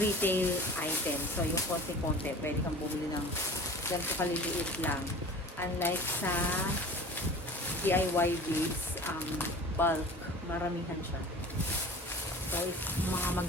retail items. So, yung konti-konti, pwede kang bumili ng ganito kaliliit lang. Unlike sa DIY beads, bulk, maramihan siya. So, if mga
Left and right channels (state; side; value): normal; both; correlation 0.38